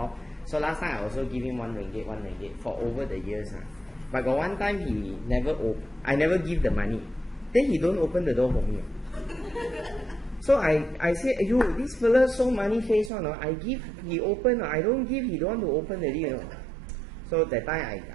So last time I also give him 1 ringgit for over the years. But got one time he never I never give the money. Then he don't open the door for me. So I say, yo, this fella so money face one. I give, he open. I don't give, he don't want to open the deal. So that time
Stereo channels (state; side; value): drops out; left; at 13.1 s